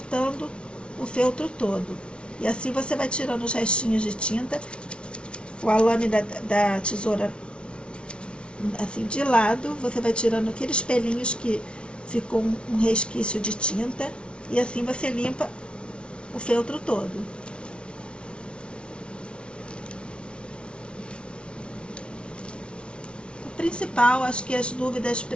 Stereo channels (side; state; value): right; late; 0.058 ms